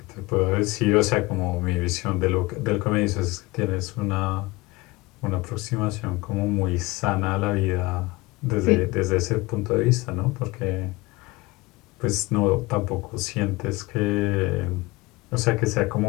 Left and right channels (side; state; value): right; quieter; 22.2 dB